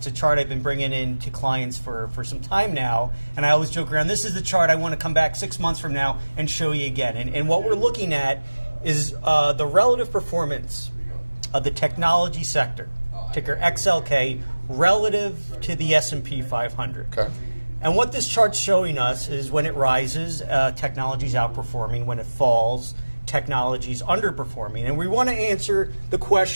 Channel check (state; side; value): inverted; both; correlation -1.00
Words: a chart I've been bringing in to clients for some time now, and I always joke around, this is the chart I want to come back 6 months from now and show you again. And what we're looking at is the relative performance of the technology sector, ticker XLK, relative to the S&P 500. Okay. And what this chart's showing us is when it rises, technology's outperforming. When it falls, technology's underperforming. And we want to answer the